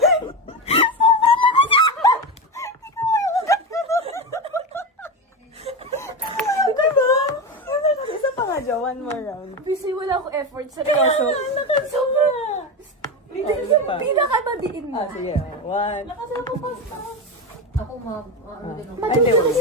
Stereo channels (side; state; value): both; normal; correlation 0.18